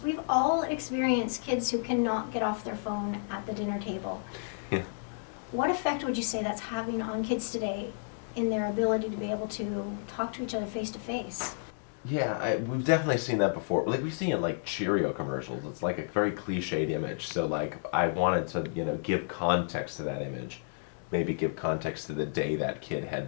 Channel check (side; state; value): right; silent; digital silence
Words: we've all experienced kids who cannot get off their phone at the dinner table. Yeah. What effect would you say that's having on kids today in their ability to be able to talk to each other face to face? Yeah, we've definitely seen that before. Like we see it in like Cheerio commercials. It's like a very cliched image. So like I wanted to, give context to that image. Maybe give context to the day that kid